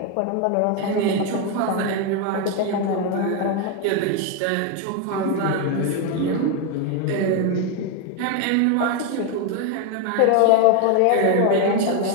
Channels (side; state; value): both; different; correlation 0.01